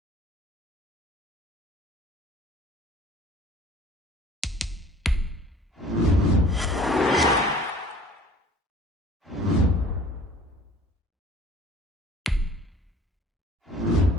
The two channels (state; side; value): normal; both; correlation 0.50